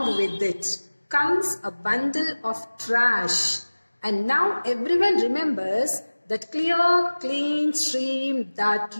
with it comes a bundle of trash. And now everyone remembers that clear, clean stream that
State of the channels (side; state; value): both; inverted; correlation -1.00